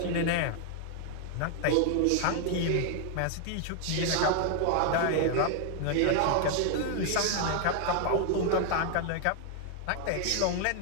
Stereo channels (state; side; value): different; both; correlation 0.00